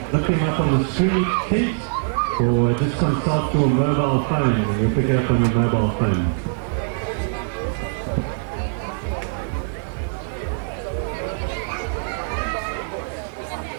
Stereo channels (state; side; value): silent; left; digital silence